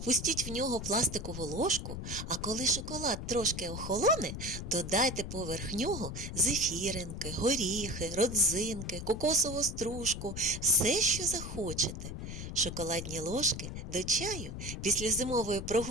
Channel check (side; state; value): left; noise; rumble, 7 dB below the sound